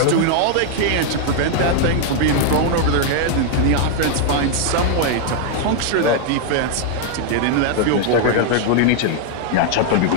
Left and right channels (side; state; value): both; different; correlation 0.00